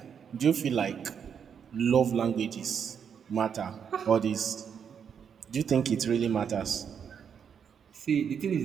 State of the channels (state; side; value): quieter; left; 7.4 dB